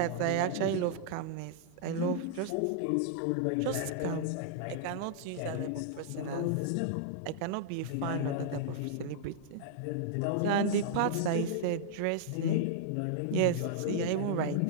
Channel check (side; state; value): both; different; correlation -0.01